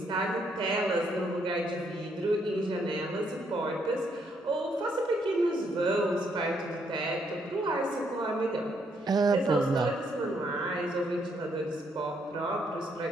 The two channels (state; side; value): normal; both; correlation 0.73